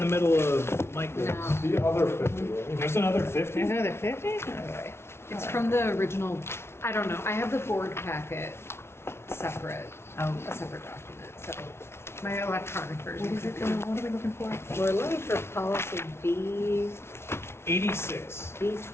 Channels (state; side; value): late; right; 0.12 ms